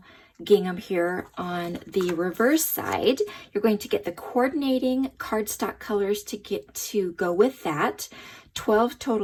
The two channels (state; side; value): identical; both; correlation 1.00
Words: gingham here on the reverse side. You're going to get the coordinating cardstock colors to go with that. 12